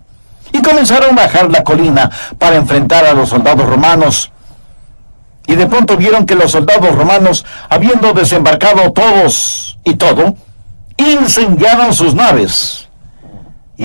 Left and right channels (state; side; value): inverted; both; correlation -1.00